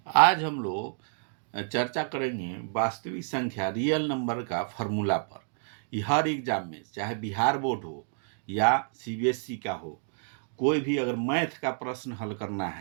आज हम लोग चर्चा करेंगे वास्तविक संख्या रियल नंबर का फॉर्मूला पर। ये हर एग्जाम में, चाहे बिहार बोर्ड हो या सीबीएसई का हो, कोई भी अगर मैथ का प्रश्न हल करना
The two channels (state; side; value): silent; left; digital silence